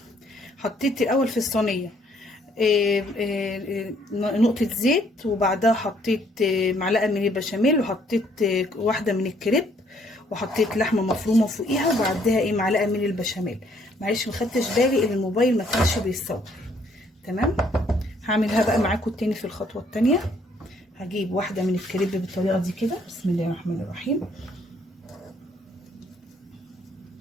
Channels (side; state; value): both; normal; correlation 0.66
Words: حطيت الاول في الصينيه نقطه زيت، وبعدها حطيت معلقه من البشاميل، وحطيت واحده من الكريب، وحطيت لحمه مفرومه فوقيها، وبعدها معلقه من البشاميل. معلش ما خدتش بالي ان الموبايل ما كانش بيصور. تمام. هعملها بقى معاكم تاني في الخطوه التانيه. هجيب واحده من الكريب بالطريقه دي كده. بسم الله الرحمن الرحيم